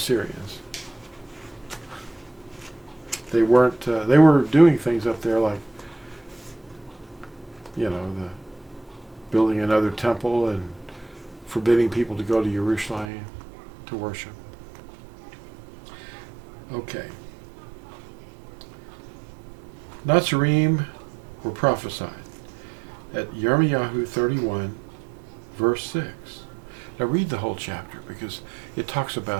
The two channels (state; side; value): drops out; left; at 13.1 s